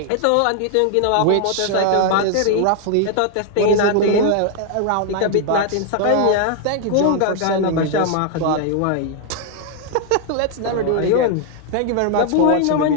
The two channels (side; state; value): both; different; correlation 0.00